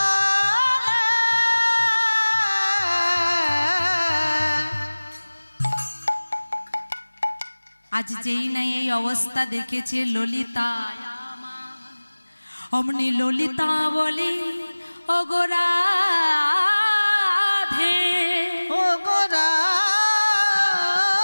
আজ যেই না এই অবস্থা দেখেছে ললিতা, অমনি ললিতা বলে, ওগো রাধে, ওগো রাধে,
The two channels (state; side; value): inverted; both; correlation -1.00